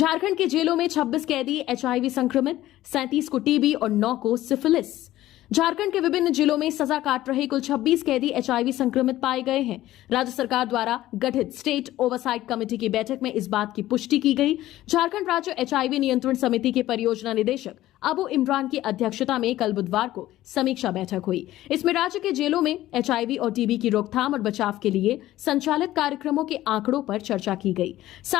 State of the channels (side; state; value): right; quieter; 14.9 dB